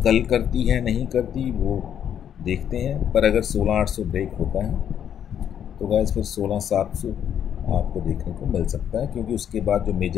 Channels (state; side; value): quieter; right; 9.3 dB